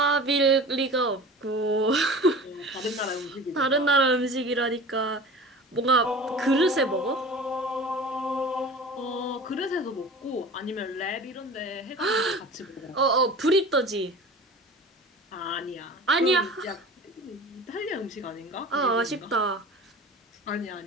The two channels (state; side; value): normal; both; correlation 0.38